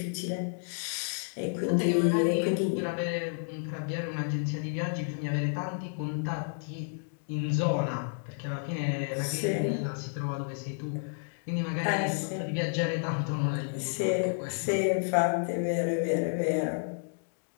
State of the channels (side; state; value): right; silent; digital silence